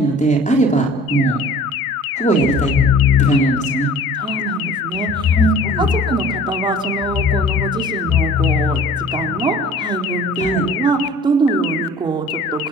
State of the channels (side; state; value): both; normal; correlation 0.48